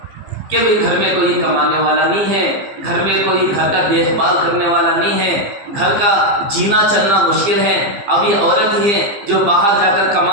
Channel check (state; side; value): late; left; 15 ms